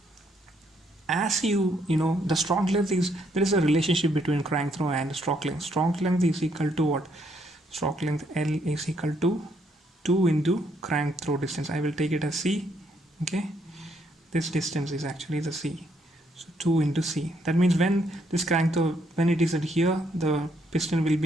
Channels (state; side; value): normal; both; correlation 0.72